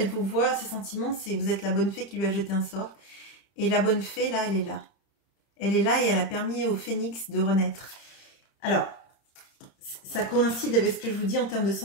vous voit, ses sentiments, c'est vous êtes la bonne fée qui lui a jeté un sort. Et la bonne fée, là, elle est là. Elle est là et elle a permis au phénix de renaître. Alors, ça coïncide avec ce que je vous dis en termes de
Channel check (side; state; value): right; late; 31 ms